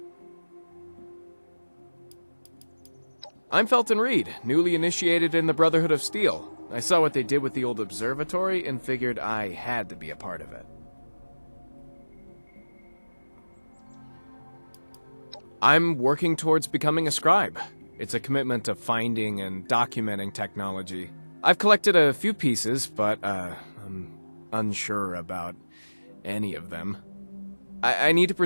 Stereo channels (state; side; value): inverted; both; correlation -1.00